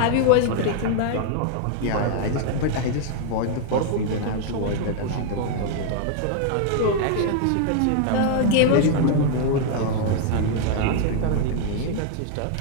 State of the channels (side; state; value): both; different; correlation 0.00